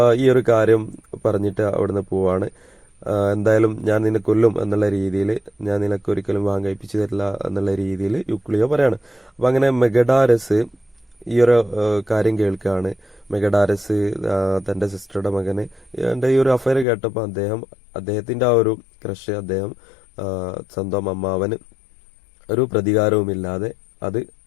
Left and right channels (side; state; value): right; drops out; at 16.9 s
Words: ഈ ഒരു കാര്യം പറഞ്ഞിട്ട് അവിടുന്ന് പോവാണ്. എന്തായാലും ഞാൻ നിന്നെ കൊല്ലും എന്നുള്ള രീതിയിൽ, ഞാൻ നിനക്ക് ഒരിക്കലും വിവാഹം കഴിപ്പിച്ചു തരില്ല എന്നുള്ള രീതിയിൽ യൂക്ലിയോ പറയാണ്. അപ്പൊ അങ്ങനെ മെഗഡാരസ് ഈ ഒരു കാര്യം കേൾക്കുകയാണ്. മെഗഡാരസ് തന്റെ സിസ്റ്ററുടെ മകന് എന്റെ ഈ ഒരു അഫയർ കേട്ടപ്പോൾ അദ്ദേഹത്തിന്റെ ആ ഒരു ക്രഷ് അദ്ദേഹം സ്വന്തം അമ്മാവന് ഒരു പ്രതികാരവുമില്ലാതെ അത്